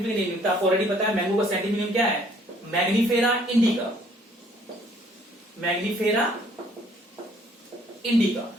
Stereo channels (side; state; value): both; normal; correlation 0.61